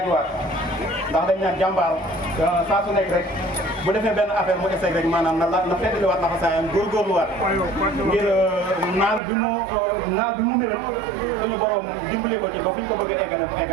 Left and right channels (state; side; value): drops out; left; at 9.2 s